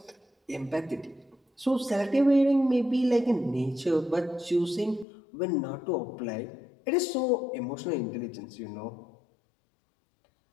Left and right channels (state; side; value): drops out; right; at 5.1 s